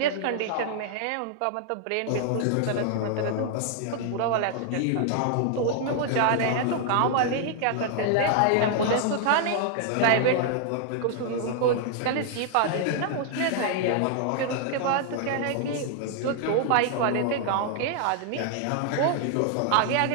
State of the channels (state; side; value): different; both; correlation 0.00